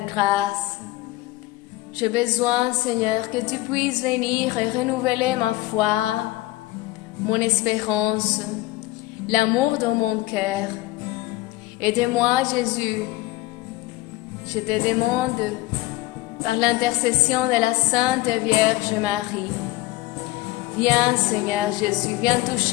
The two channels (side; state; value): right; quieter; 18.7 dB